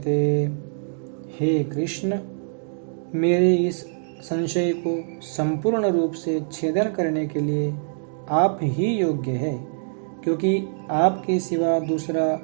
हे कृष्ण, मेरे इस संशय को संपूर्ण रूप से छेदन करने के लिए आप ही योग्य है, क्योंकि आपके सिवा दूसरा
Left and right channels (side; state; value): left; silent; digital silence